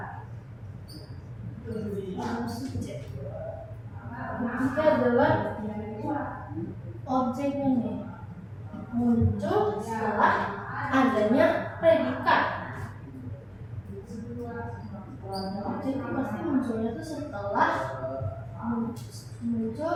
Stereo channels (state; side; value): identical; both; correlation 1.00